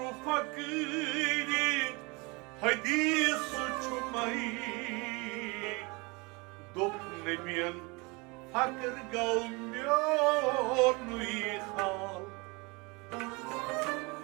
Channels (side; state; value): left; quieter; 27.4 dB